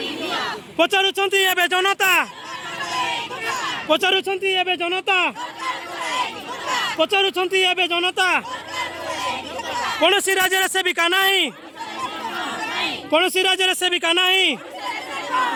पचारुछंती एबे जनता पचारुछंती एबे जनता पचारुछंती एबे जनता कौन सी राज्य सेविका नहीं कौन सी राज्य सेविका नहीं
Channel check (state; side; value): identical; both; correlation 1.00